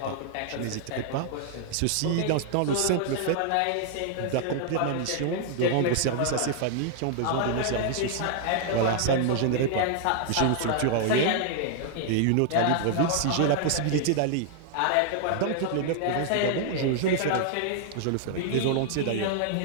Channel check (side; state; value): both; different; correlation -0.01